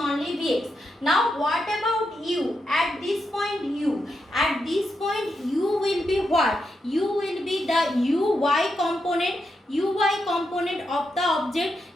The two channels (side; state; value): both; normal; correlation 0.84